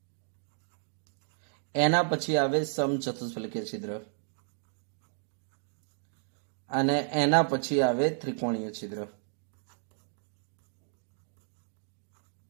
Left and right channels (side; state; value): left; silent; digital silence